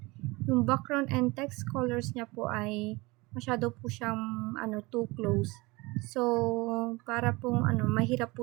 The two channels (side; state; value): left; quieter; 23.6 dB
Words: Yung background and text colors niya po ay masyado po siyang too close. So, para pong mahirap po